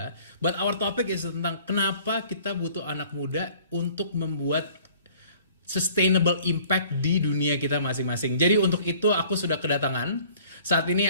But our topic is tentang kenapa kita butuh anak muda untuk membuat sustainable impact di dunia kita masing-masing. Jadi untuk itu aku sudah kedatangan. Saat ini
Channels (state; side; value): inverted; both; correlation -0.53